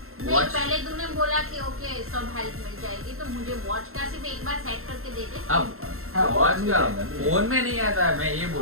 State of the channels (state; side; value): late; left; 0.62 ms